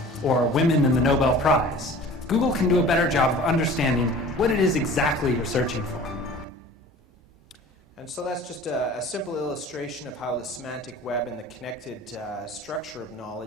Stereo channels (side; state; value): both; normal; correlation 0.44